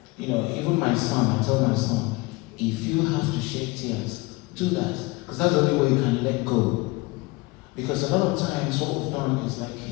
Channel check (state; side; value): quieter; right; 23.5 dB